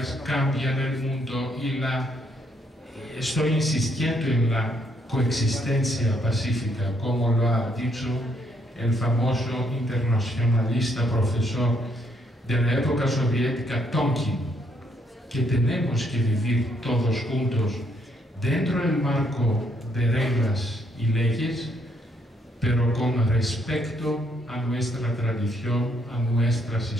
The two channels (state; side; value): normal; both; correlation 0.72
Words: cambian el mundo y estoy insistiendo en la coexistencia pacífica, como lo ha dicho el famoso internacionalista profesor de la época soviética Tonkin, que tenemos que vivir todos juntos dentro del marco de reglas y leyes, pero con respeto a nuestra tradición, a nuestras